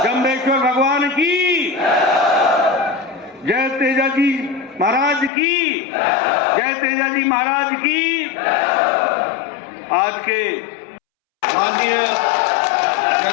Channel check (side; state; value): right; drops out; at 5.3 s